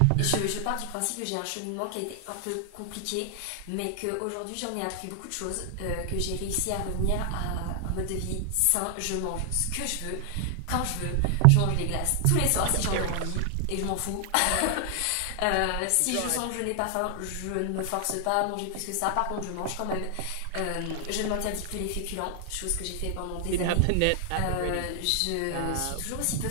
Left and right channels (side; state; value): both; different; correlation 0.00